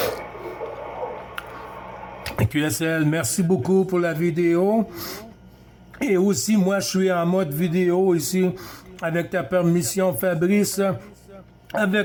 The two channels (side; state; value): both; identical; correlation 1.00